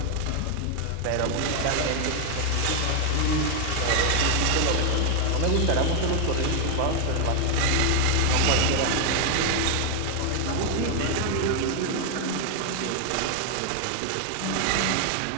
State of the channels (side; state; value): both; different; correlation 0.00